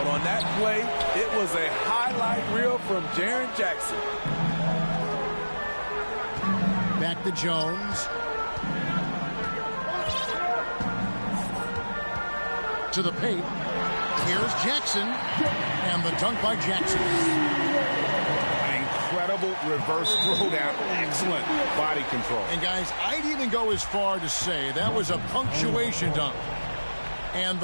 on that play, it was a highlight reel from Jaren Jackson. Back to Jones. To the paint. Here's Jackson. And the dunk by Jackson. Incredible reverse throwdown. Excellent body control. And guys, I'd even go as far to say that was a punctuation dunk. And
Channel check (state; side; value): inverted; both; correlation -1.00